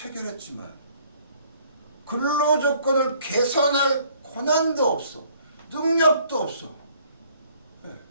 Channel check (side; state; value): both; inverted; correlation -0.60